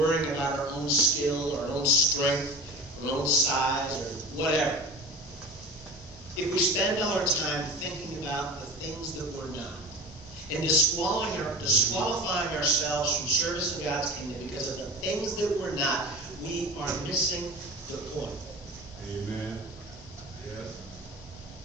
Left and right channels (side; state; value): both; normal; correlation 0.33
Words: about our own skill, our own strength, our own size, or whatever, if we spend all our time thinking about the things that we're not, and disqualifying ourselves from service in God's kingdom because of the things that we're not, we are missing the point. Amen. Yes.